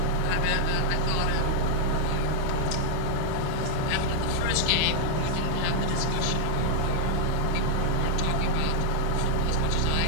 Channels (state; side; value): different; both; correlation 0.00